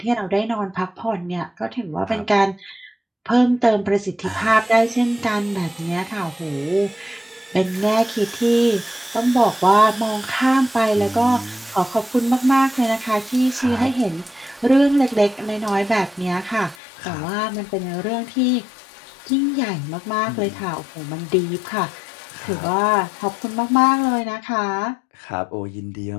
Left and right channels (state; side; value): drops out; right; at 16.8 s